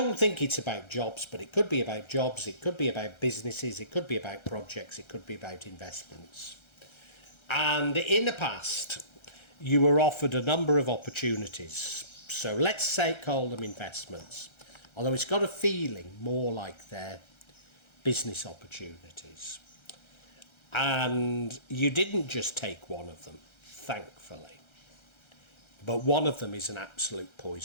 think it's about jobs, but it could be about jobs, it could be about businesses, it could be about projects, it could be about investments. And in the past, you were offered a number of opportunities. So let's call them investments, although it's got a feeling more like they're business opportunities. And you didn't just take one of them, thankfully. But one of them is an absolute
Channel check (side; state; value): right; late; 1.3 ms